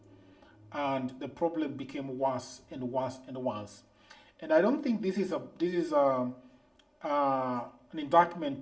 and the problem became worse and worse and worse. And I don't think this is an indictment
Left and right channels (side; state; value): both; identical; correlation 1.00